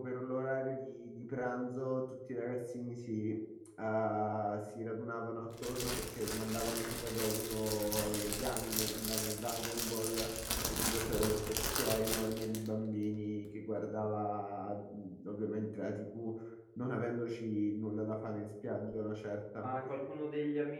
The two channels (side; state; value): both; identical; correlation 1.00